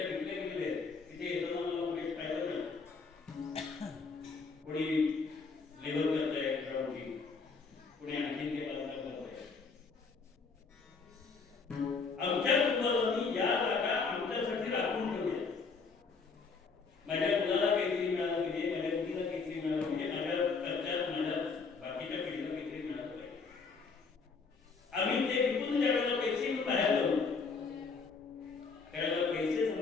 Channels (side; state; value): right; quieter; 4.8 dB